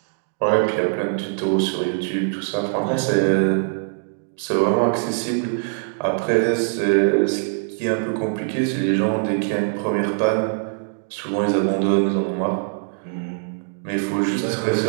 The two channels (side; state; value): left; silent; 64 dB below the other